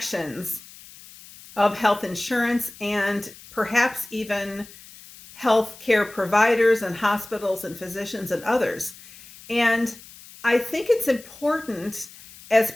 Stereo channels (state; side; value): noise; left; hiss, 20 dB below the sound